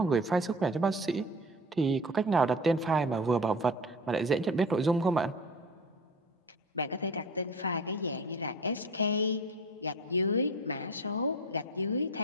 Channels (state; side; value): normal; both; correlation 0.35